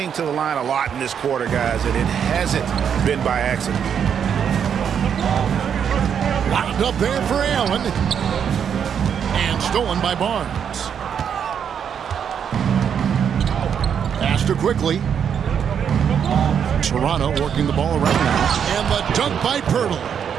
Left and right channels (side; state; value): left; quieter; 7.9 dB